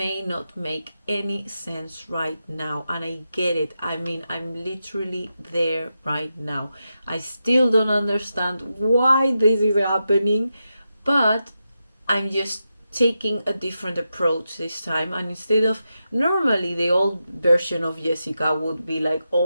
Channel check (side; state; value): both; inverted; correlation -0.88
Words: not make any sense right now, and I get it. I mean, I'm literally there right now. I still don't understand why this is happening, but I'm just taking a different approach this time. And instead of, normally the old version of Jessica would be like